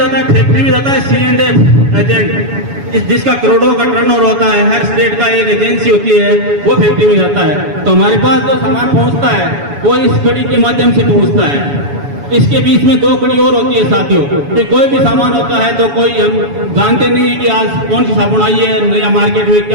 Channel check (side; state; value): left; late; 7.1 ms